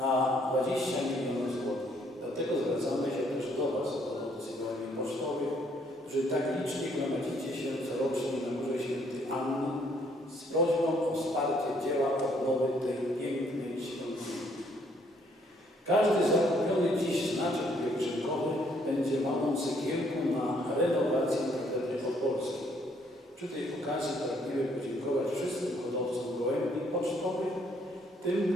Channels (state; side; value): normal; both; correlation 0.67